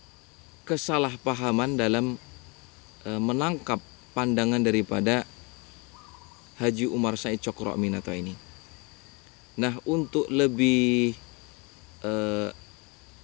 kesalahpahaman dalam menangkap pandangan daripada Haji Umar Said Cokro Aminoto ini. Nah, untuk lebih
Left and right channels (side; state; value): right; quieter; 29.9 dB